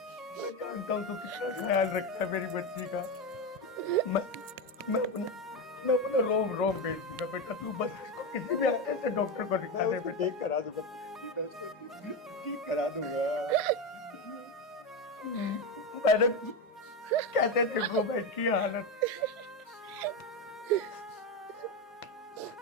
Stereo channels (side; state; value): both; normal; correlation 0.14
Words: हूँ तू कितना ख्याल रखता है मेरी बच्ची का। मैं अपना रोम बेच दूंगा बेटा, तू बस इसको किसी भी अच्छे से डॉक्टर को दिखा दे बेटा। ठीक करा दूंगा, ठीक करा दूंगा। मैंने कैसे देखो बैठ की हालत।